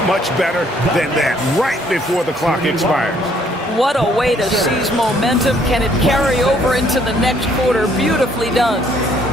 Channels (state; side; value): normal; both; correlation 0.64